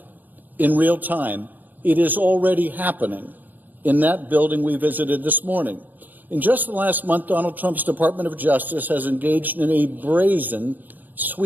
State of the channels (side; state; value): left; late; 0.086 ms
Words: in real time. It is already happening in that building we visited this morning. In just the last month, Donald Trump's Department of Justice has engaged in a brazen,